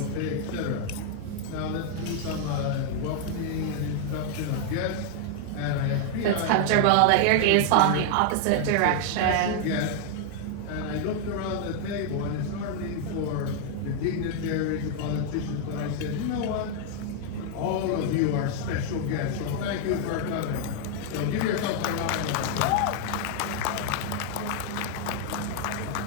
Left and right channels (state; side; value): different; both; correlation 0.00